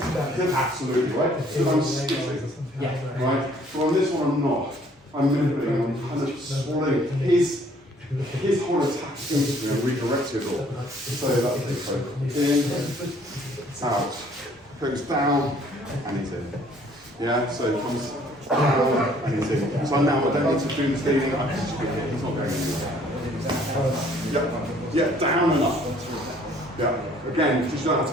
right? So I'm skipping. Yeah. Right? So on this one, I'm not. I'm manipulating. I'm kind of swallowing his whole attack into me and redirecting it all. So that's it. So in, out. Goes down, and he's in. Yeah. So it comes. And he's in. So now I don't need to do this thing, I just pick it, he's not going anywhere. Yeah, down and up. Yeah, again, because you don't have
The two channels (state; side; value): normal; both; correlation 0.59